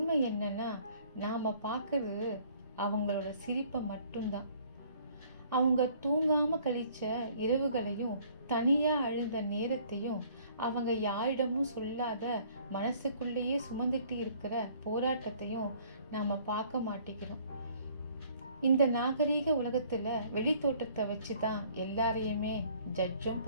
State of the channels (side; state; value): both; inverted; correlation -0.58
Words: என்னன்னா, நாம் பார்க்கறது அவங்களோட சிரிப்பை மட்டும்தான். அவங்க தூங்காமல் கழிச்ச இரவுகளையும், தனியாக அழுத நேரத்தையும், அவங்க யாரிடமும் சொல்லாத மனசுக்குள்ளேயே சுமந்துட்டு இருக்கிற போராட்டத்தையும் நாம் பார்க்க மாட்டேங்கிறோம். இந்த நாகரீக உலகத்தில் வெளித்தோட்டத்தை வச்சு தான் எல்லாரையுமே ஜட்ஜும்